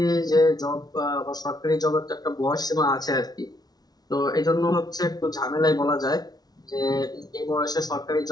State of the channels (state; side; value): late; right; 0.19 ms